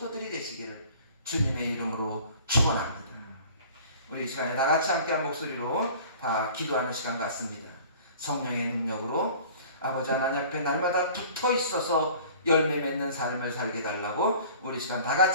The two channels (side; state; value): both; inverted; correlation -0.46